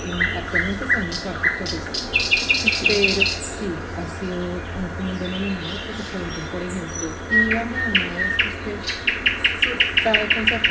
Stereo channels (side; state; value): both; identical; correlation 1.00